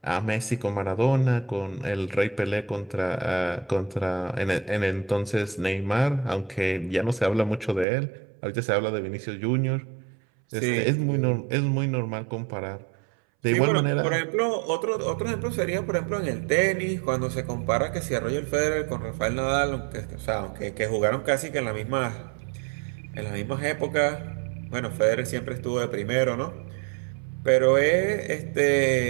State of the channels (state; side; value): drops out; left; at 7.9 s